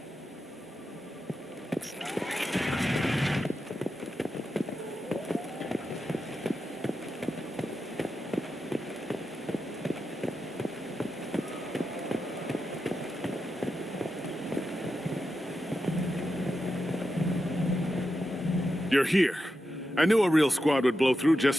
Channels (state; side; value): normal; both; correlation 0.88